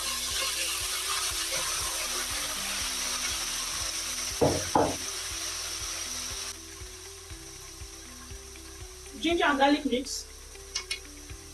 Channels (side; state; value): both; identical; correlation 1.00